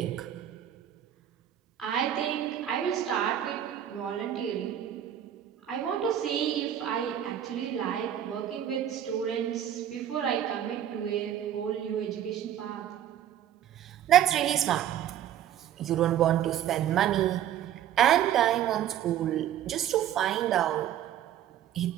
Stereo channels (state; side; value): quieter; left; 10.8 dB